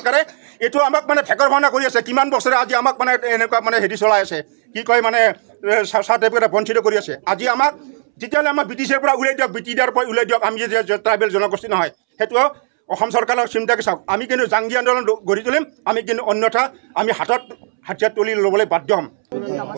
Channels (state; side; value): silent; left; 68 dB below the other